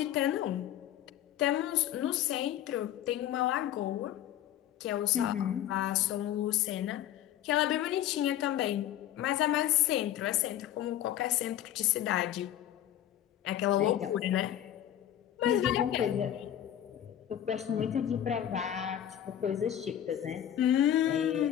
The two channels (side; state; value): right; quieter; 11.4 dB